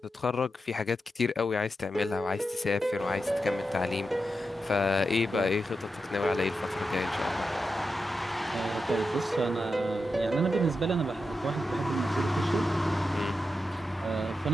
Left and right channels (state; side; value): normal; both; correlation 0.89